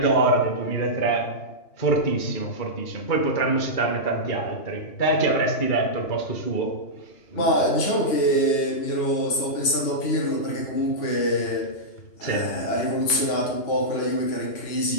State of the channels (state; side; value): late; right; 2.9 ms